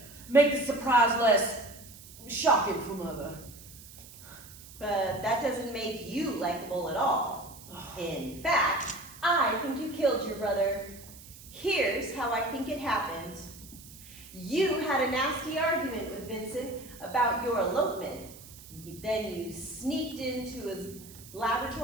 make the surprise less shocking for Mother. But that doesn't make you likable at all. In fact, I think you killed your brother. Here's how I think it happened. You had a nasty argument with Vincent about your elopement. Then you sneaked into his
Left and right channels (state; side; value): noise; right; hiss, 18 dB below the sound